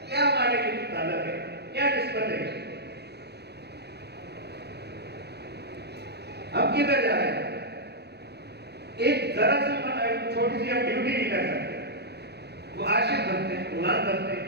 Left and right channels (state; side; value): late; left; 0.48 ms